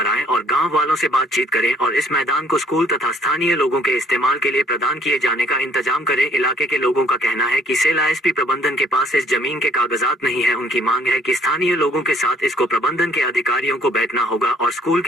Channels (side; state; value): both; normal; correlation 0.62